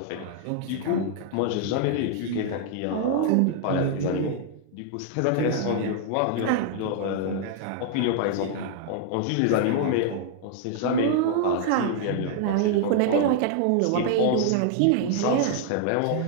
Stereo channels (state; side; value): different; both; correlation 0.00